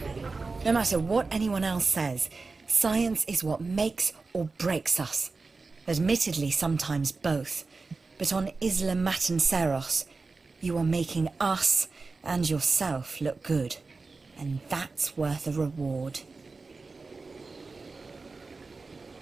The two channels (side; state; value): left; quieter; 4.0 dB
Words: No matter what anyone else says, science is what makes or breaks us. Admittedly, sometimes both. But on Isla Matanceros, you are making us and yourself look good. And that's worth a reward.